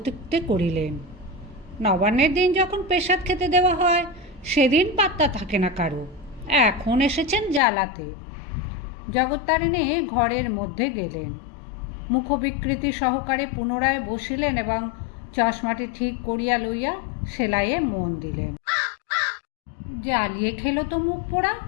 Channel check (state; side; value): drops out; right; at 7.6 s